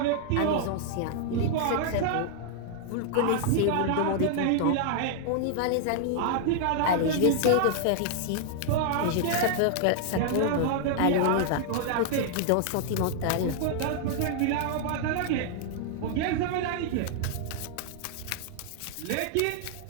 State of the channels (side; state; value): both; different; correlation -0.01